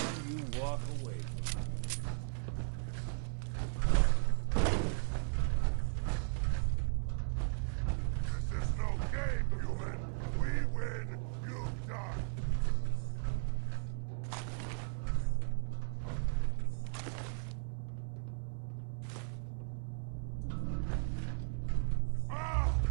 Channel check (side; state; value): left; silent; 53 dB below the other